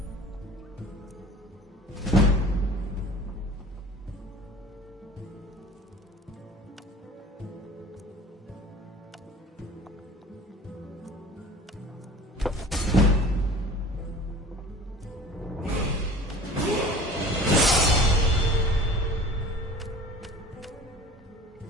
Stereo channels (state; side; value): normal; both; correlation 0.42